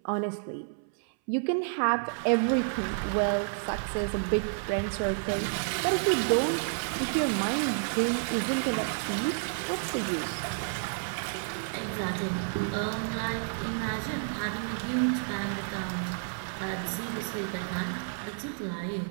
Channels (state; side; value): silent; left; 58 dB below the other